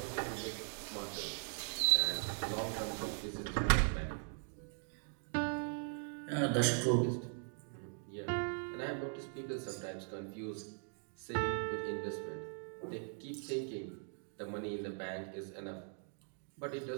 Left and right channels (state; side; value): silent; left; 51 dB below the other